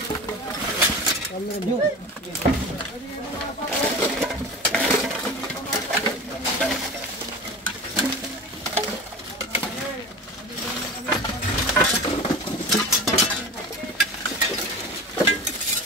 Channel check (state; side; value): normal; both; correlation 0.32